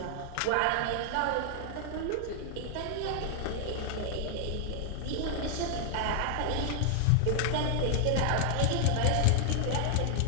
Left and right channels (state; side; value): different; both; correlation 0.00